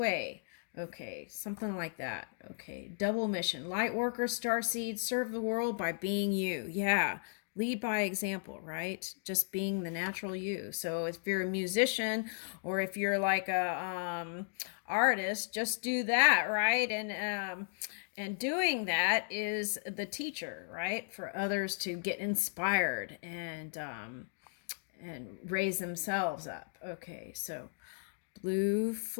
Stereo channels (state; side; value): silent; right; digital silence